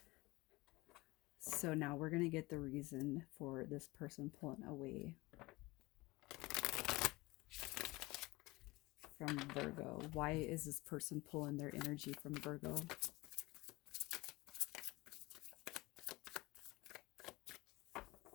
So now we're going to get the reason for this person pulling away from Virgo. Why is this person pulling their energy from Virgo?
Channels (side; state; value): right; quieter; 21.6 dB